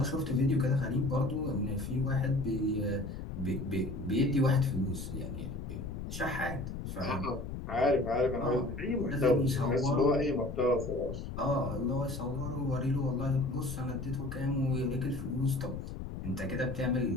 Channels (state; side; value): noise; left; rumble, 7 dB below the sound